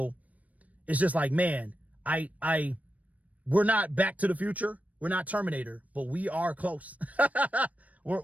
it's just like, man, we're not Back to the Future. We're not Terminator, but we are close.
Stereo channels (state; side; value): late; left; 0.070 ms